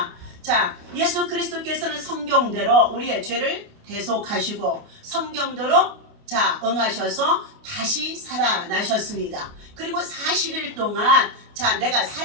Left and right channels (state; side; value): late; left; 29 ms